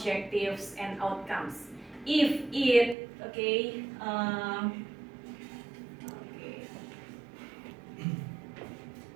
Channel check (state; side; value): drops out; left; at 3.0 s